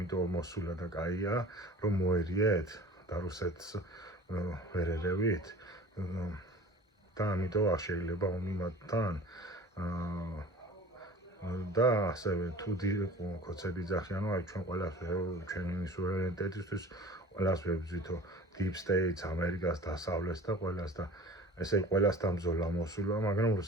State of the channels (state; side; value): normal; both; correlation 0.42